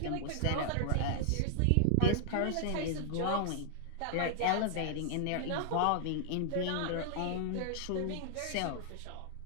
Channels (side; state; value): both; different; correlation 0.00